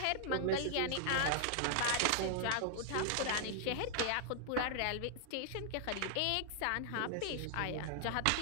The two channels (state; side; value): different; both; correlation -0.01